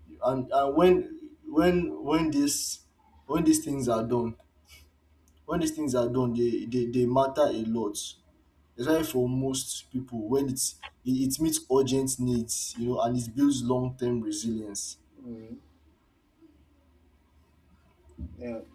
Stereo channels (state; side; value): identical; both; correlation 1.00